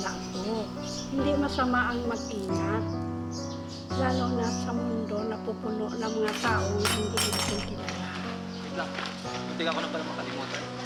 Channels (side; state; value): both; identical; correlation 1.00